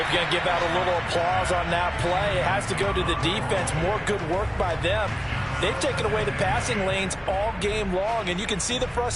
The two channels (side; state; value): both; identical; correlation 1.00